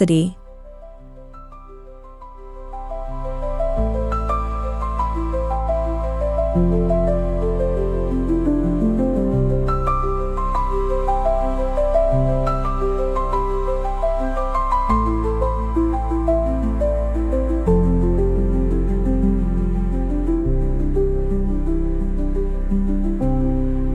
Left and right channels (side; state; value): both; identical; correlation 1.00